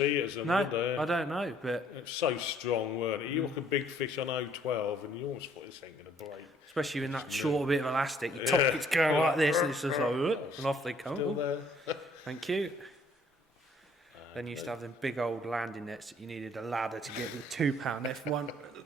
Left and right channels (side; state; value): both; normal; correlation 0.62